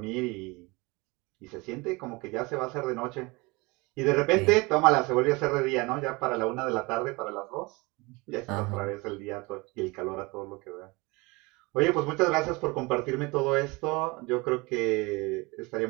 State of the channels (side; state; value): left; quieter; 25.2 dB